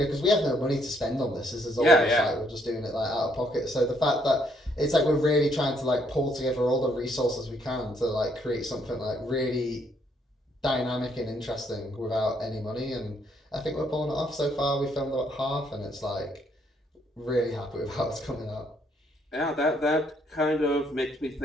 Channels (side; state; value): both; normal; correlation 0.70